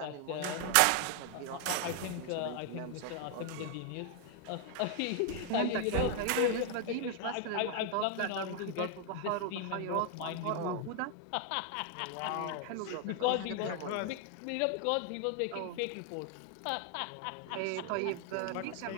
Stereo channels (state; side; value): different; both; correlation 0.00